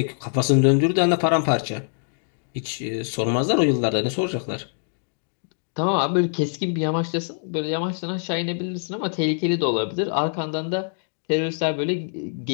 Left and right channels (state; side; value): silent; right; digital silence